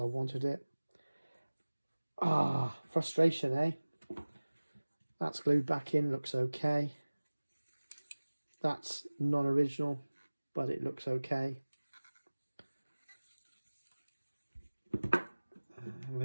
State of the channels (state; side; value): inverted; both; correlation -1.00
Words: wanted it. Frustration, eh? That's glued back in, looks okay. That's non-original, but it looks okay.